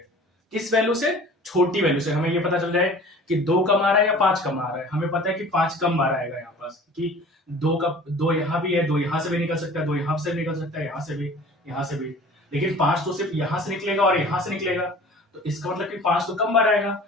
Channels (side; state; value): both; normal; correlation 0.45